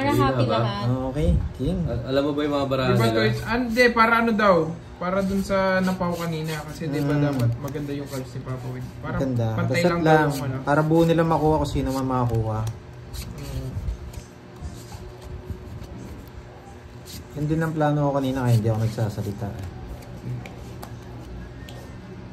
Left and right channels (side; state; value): both; identical; correlation 1.00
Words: Hindi happy na ba? lahat. Okay, king. Alam mo ba yung mga barahan Diba nila? to? Hindi, para ano daw? Para dun sa napaw kanina. Kasi di ba Mm. dapat maganda yung cards ni Papa Win. Para Ganda. pantay Reset lang lang. daw yung ano. Para buo nila makuha kung sino man makakuha. Mm. Yun din ang plano ko kanina kaya hindi ako nagsasalita. Eh.